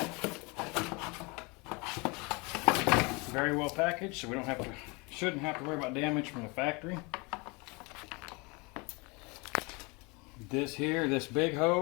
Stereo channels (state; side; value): quieter; right; 28.5 dB